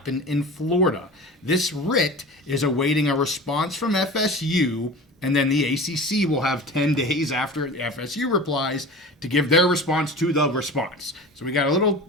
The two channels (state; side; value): normal; both; correlation 0.35